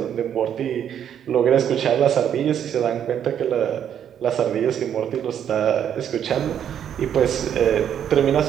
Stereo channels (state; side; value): quieter; left; 9.3 dB